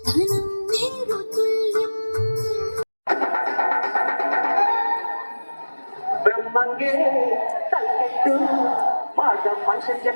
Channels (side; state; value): both; inverted; correlation -1.00